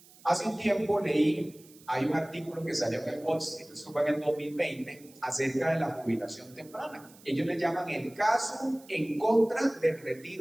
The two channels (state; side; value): noise; right; hiss, 24 dB below the sound